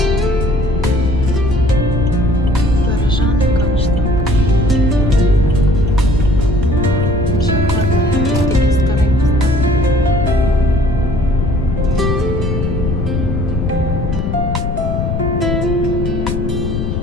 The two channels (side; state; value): left; noise; rumble, 1 dB below the sound